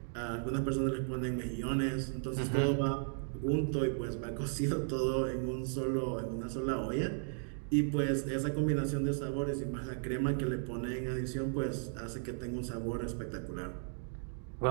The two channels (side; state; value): left; silent; digital silence